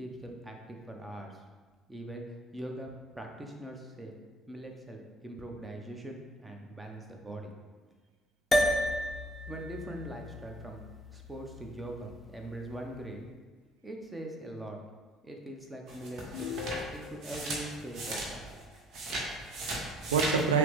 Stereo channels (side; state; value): both; normal; correlation 0.50